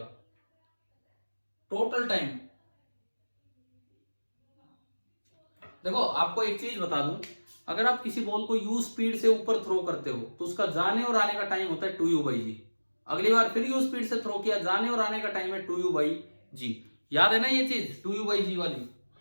Total time. देखो आपको एक चीज बता दूं, अगर आप किसी बॉल को u स्पीड से ऊपर थ्रो करते हो तो उसका जाने और आने का टाइम होता है 2u/g। अगली बार फिर u स्पीड से थ्रो किया, जाने और आने का टाइम है 2u/g। याद है ना ये चीज 2u/g वाली?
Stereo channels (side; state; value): both; inverted; correlation -1.00